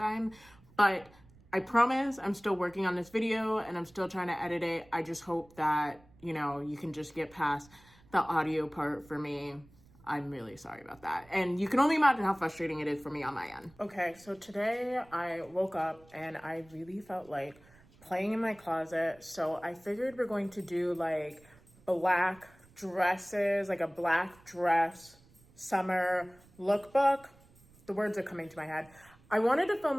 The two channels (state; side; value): noise; right; rumble, 27 dB below the sound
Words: but I promise I'm still working on this video and I'm still trying to edit it. I just hope that, you can just get past the audio part for me. I'm really sorry about that. And you can only imagine how frustrating it is for me on my end. Okay, so today I woke up and I really felt like playing in my closet. So I figured we're going to do like black dresses, like a black dress summer lookbook. The words are coming to my head. I wanted to film